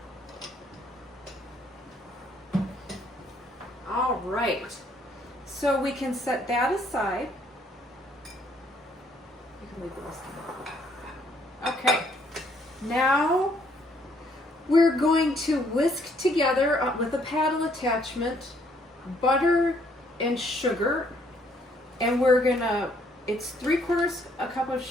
All right. So we can set that aside. You can leave the rest of it. Okay. Now we're going to whisk together with a paddle attachment butter and sugar, and we're gonna, it's 3/4 a cup of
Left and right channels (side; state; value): both; normal; correlation 0.67